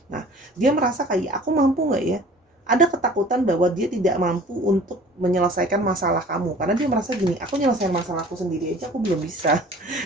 Nah, dia merasa kayak, aku mampu nggak ya? Ada ketakutan bahwa dia tidak mampu untuk menyelesaikan masalah kamu. Karena dia merasa gini, aku nyelesain masalahku sendiri aja aku belum bisa.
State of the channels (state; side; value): normal; both; correlation 0.47